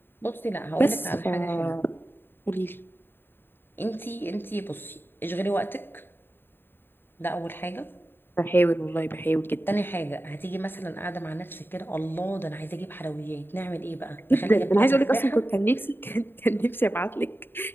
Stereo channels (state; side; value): late; right; 0.10 ms